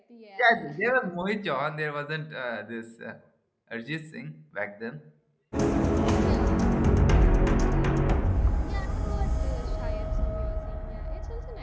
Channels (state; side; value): identical; both; correlation 1.00